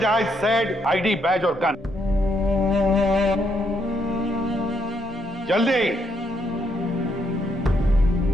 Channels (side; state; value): both; normal; correlation 0.75